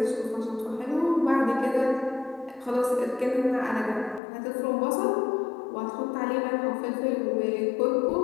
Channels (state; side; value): drops out; right; at 4.2 s